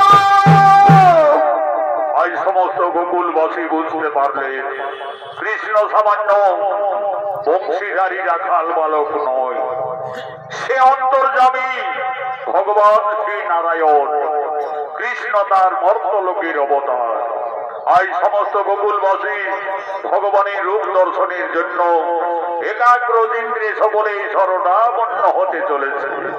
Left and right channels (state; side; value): identical; both; correlation 1.00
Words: কৃষ্ণ সামান্য বংশীধারী রাখাল বালক নয়, সে অন্তর্যামী ভগবান শ্রী নারায়ণ। কৃষ্ণ তার মর্তলোকের অবতার। আজ সমস্ত গোকুলবাসী ভগবানের রূপ দর্শনের জন্য একাগ্র ইন্দ্রে সকলে শরণাপন্ন হতে চলেছে।